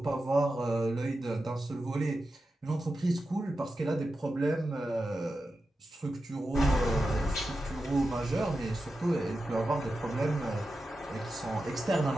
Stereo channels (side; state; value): both; normal; correlation 0.91